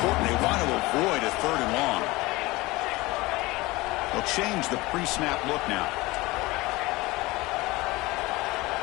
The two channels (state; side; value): quieter; right; 21.2 dB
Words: They want to avoid a 3rd and long. They'll change the pre-snap look now.